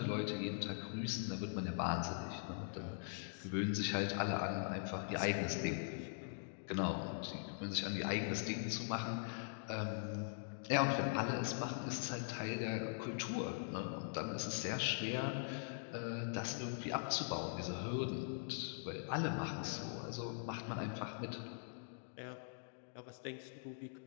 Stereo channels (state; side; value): silent; right; digital silence